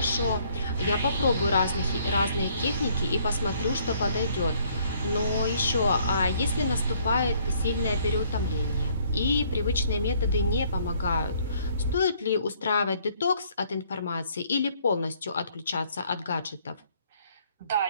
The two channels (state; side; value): inverted; both; correlation -0.64